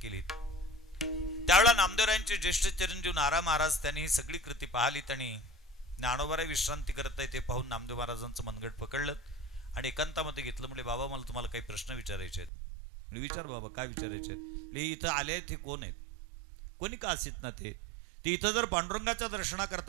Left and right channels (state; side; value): drops out; left; at 12.5 s